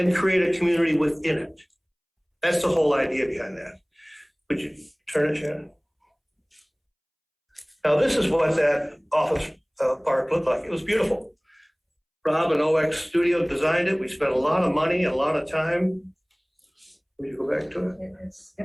create a community within it. That's the whole idea behind that. Would you turn it, Shannon? Now, this is what that office park looked like. It was beautiful. Rob and OX Studio designed it. We spent a lot of money, a lot of time. Will you go back to it?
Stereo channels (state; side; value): identical; both; correlation 1.00